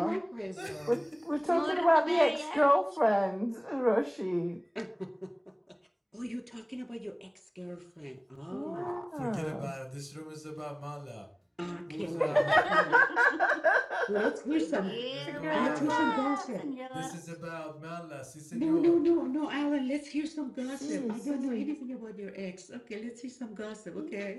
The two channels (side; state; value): both; identical; correlation 1.00